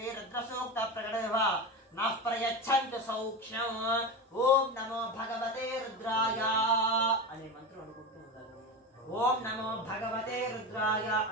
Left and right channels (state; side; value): normal; both; correlation 0.22